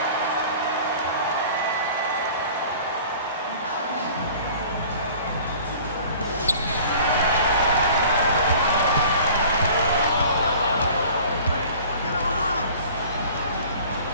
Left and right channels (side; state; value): both; inverted; correlation -0.46